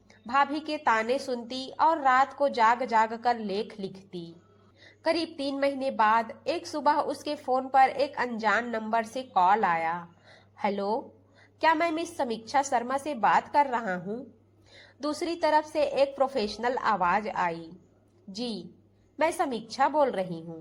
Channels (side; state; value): both; identical; correlation 1.00